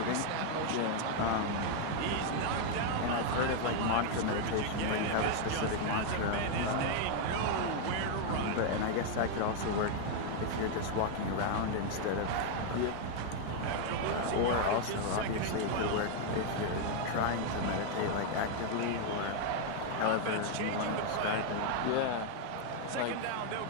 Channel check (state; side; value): different; both; correlation 0.00